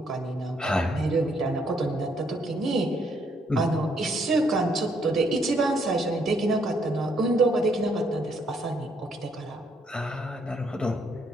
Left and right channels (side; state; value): both; normal; correlation 0.70